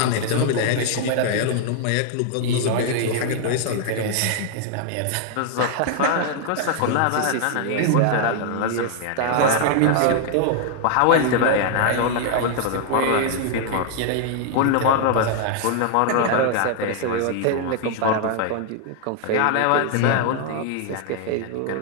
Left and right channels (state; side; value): different; both; correlation 0.00